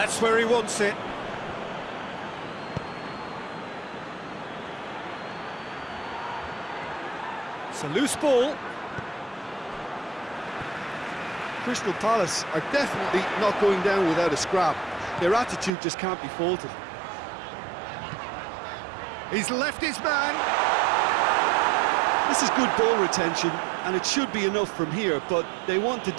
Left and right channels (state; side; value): drops out; left; at 15.7 s